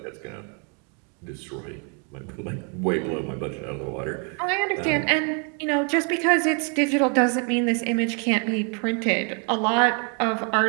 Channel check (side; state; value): left; quieter; 38.1 dB